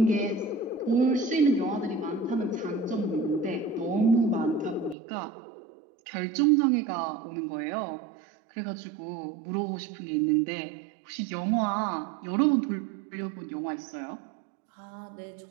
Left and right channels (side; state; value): left; drops out; at 5.0 s